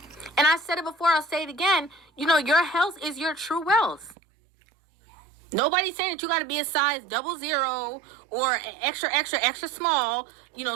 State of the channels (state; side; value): drops out; left; at 4.2 s